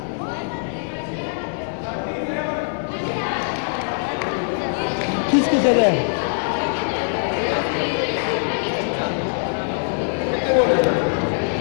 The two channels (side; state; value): right; silent; digital silence